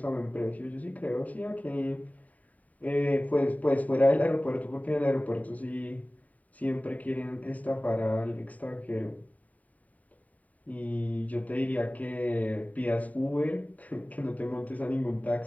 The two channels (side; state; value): right; late; 0.072 ms